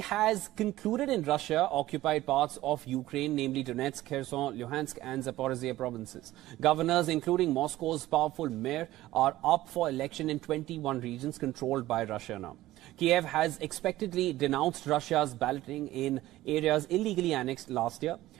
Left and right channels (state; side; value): quieter; left; 16.0 dB